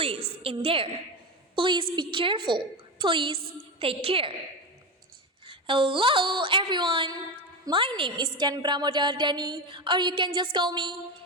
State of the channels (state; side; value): normal; both; correlation 0.18